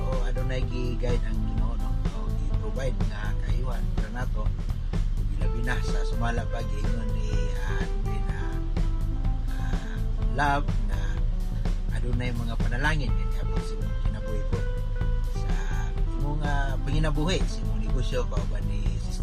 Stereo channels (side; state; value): both; identical; correlation 1.00